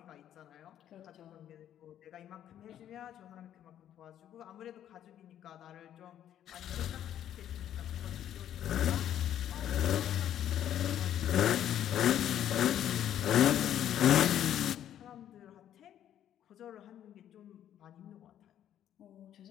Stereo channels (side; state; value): right; quieter; 10.8 dB